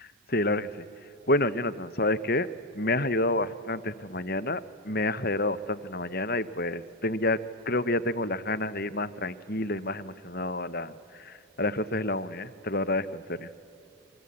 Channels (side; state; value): both; normal; correlation 0.07